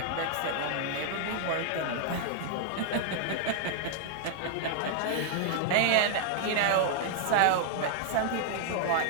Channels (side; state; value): both; different; correlation -0.01